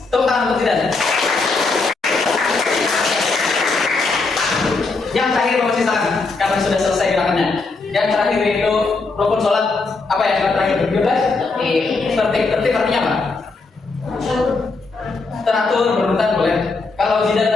Tepuk tangan untuk tidak. Yang terakhir Bapak silakan, karena sudah selesai gerakannya. Yang terakhir itu rukun sholat. Apa ya yang terakhir? 12. Tertib artinya apa? Teratur, berurutan boleh. Kalau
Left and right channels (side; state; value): right; quieter; 3.9 dB